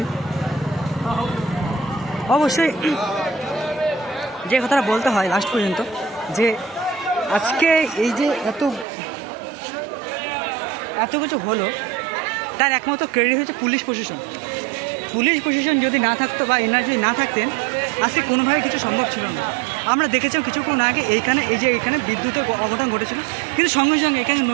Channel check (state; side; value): drops out; left; at 8.8 s